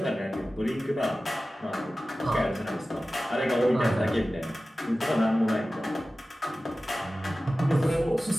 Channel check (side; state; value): both; normal; correlation 0.96